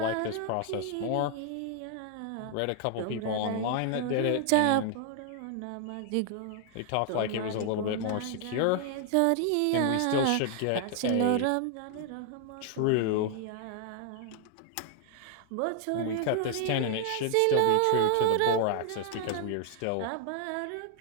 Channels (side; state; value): both; different; correlation 0.00